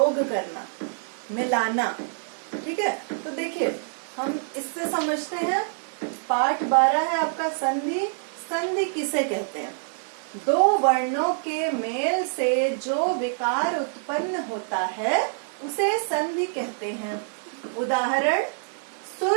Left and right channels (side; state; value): left; silent; 61 dB below the other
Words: करना, मिलाना। ठीक है, तो देखिए हम इससे समझते हैं। पाठ 12 है आपका संधि। संधि किसे कहते हैं? दो वर्णों के मेल से जो विकार उत्पन्न होता है उसे संधि कहते हैं। उदाहरण,